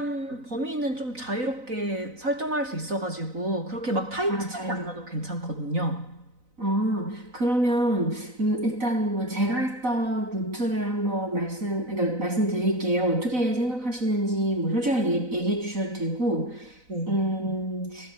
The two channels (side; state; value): left; late; 4.0 ms